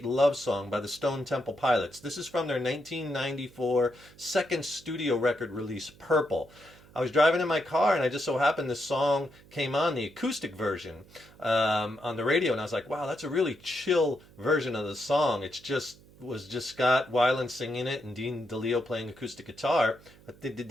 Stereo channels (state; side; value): noise; right; hum, 24 dB below the sound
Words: Love Song by the Stone Temple Pilots. This is from their 1994 second studio record release, Purple. I was driving in my car and I just so happened this song came on, the acoustic version, on the radio, and I was like, wow, that's a really chill version of the song. Was just Scott Weiland singing it and Dean DeLeo playing acoustic guitar. They did